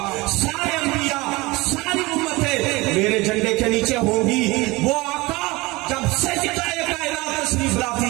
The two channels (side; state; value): left; quieter; 22.2 dB